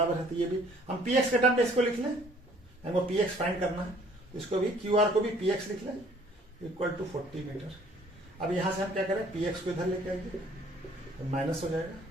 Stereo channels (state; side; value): normal; both; correlation 0.57